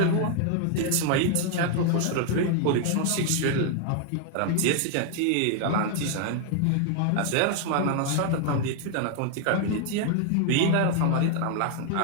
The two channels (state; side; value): different; both; correlation 0.00